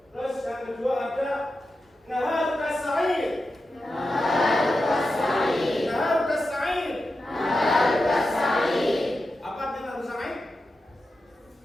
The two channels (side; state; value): both; normal; correlation 0.90